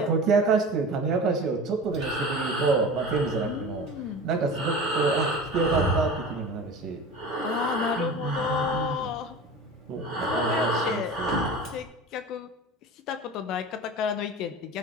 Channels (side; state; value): both; normal; correlation 0.34